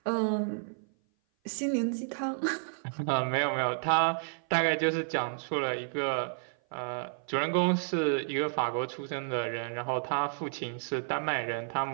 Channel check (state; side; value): silent; left; 55 dB below the other